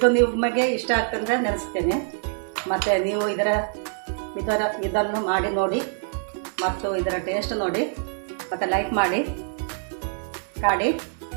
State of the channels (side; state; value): left; silent; 62 dB below the other